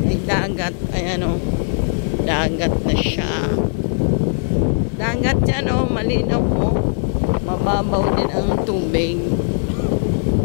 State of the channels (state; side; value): silent; right; digital silence